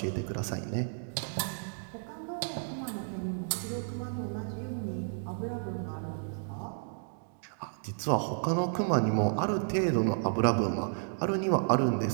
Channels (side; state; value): left; silent; digital silence